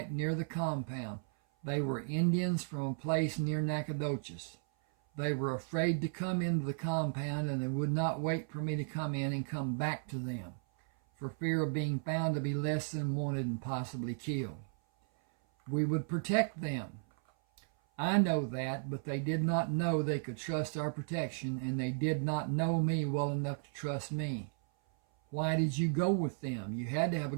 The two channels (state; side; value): silent; left; 55 dB below the other